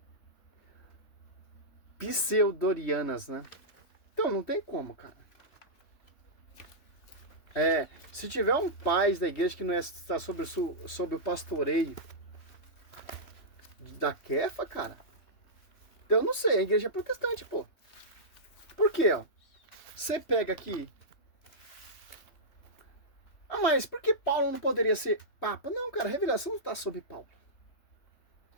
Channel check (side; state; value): right; late; 3.1 ms